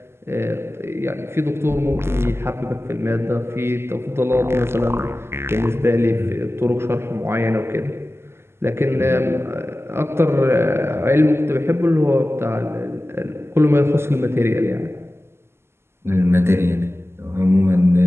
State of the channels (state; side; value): late; left; 0.12 ms